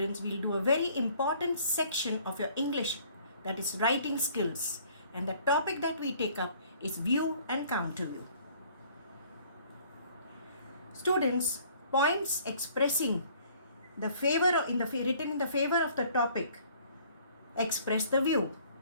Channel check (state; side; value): inverted; both; correlation -0.57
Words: will do a very important section of your English, that is writing skills, and the topic that we take up is view and counter view. Students, points expressing the favor written in the favor of the topic express the view,